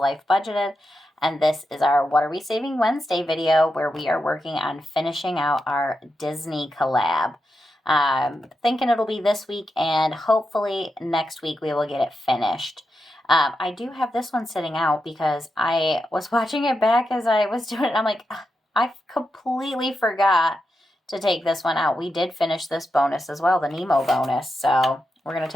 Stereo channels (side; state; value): both; normal; correlation 0.87